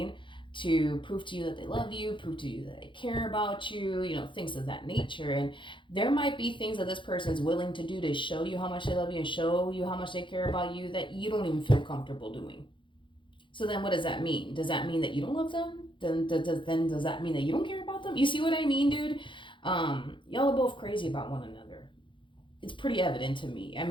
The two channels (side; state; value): right; late; 0.24 ms